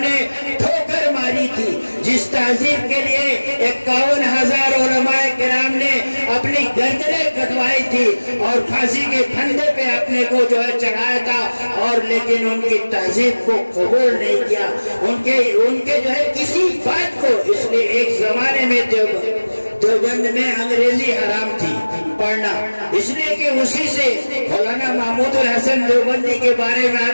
ٹھوکر ماری تھی، جس تہذیب کے لیے 51,000 علماء کرام نے اپنی گردنیں کٹوائی تھی اور پھانسی کے پھندے پہ اپنے کو جو ہے چڑھایا تھا، اور لیکن ان کی تہذیب کو قبول نہیں کیا، ان کے جو ہے کسی بات کو، اس لیے ایک زمانے میں دیوبند میں انگریزی حرام تھی پڑھنا، اس لیے کہ اسی سے مولانا محمود الحسن دیوبندی کے بارے میں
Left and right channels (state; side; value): inverted; both; correlation -1.00